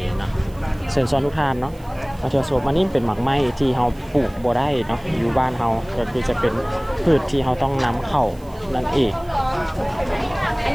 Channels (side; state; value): right; noise; hiss, 26 dB below the sound